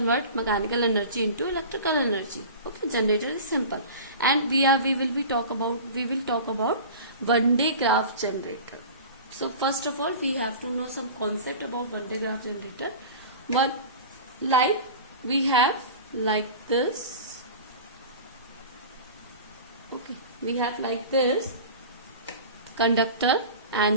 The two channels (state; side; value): inverted; both; correlation -0.35